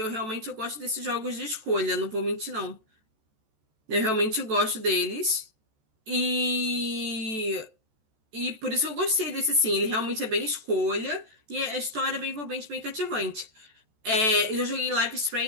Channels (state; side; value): late; left; 14 ms